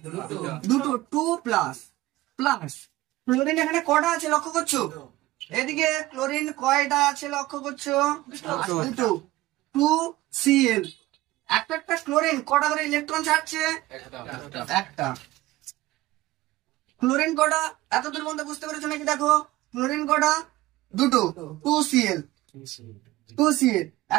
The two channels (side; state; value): left; quieter; 17.7 dB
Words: 2টো, 2 প্লাস প্লাস। ক্লোরিন এখানে কটা আছে লক্ষ্য করছো? এদিকে ক্লোরিন কয়টা আছে লক্ষ্য করছো? 2টো। 2Cl। একটা একটা ক্লোরিন কটা করে ইলেকট্রন ছাড়ছে? একটা। ক্লোরিন কটা? এতদূর পর্যন্ত বুঝতে পেরেছো নাকি? দেখো ক্লোরিন কটা? 2টো। 2Cl, 2Cl।